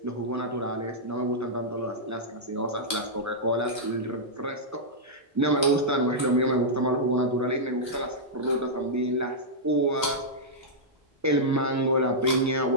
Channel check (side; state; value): both; normal; correlation -0.09